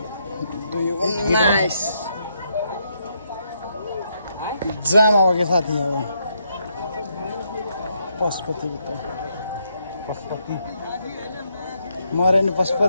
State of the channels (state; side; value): inverted; both; correlation -0.77